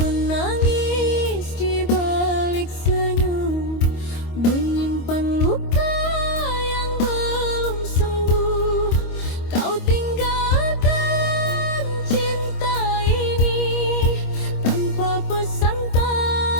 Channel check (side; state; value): right; late; 25 ms